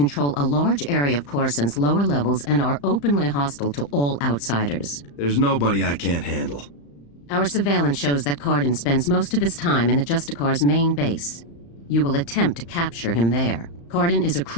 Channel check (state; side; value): late; right; 35 ms